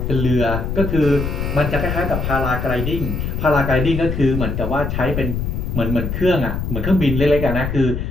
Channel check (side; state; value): left; noise; rumble, 3 dB below the sound